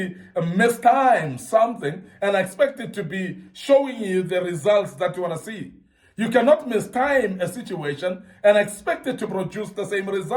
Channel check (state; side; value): identical; both; correlation 1.00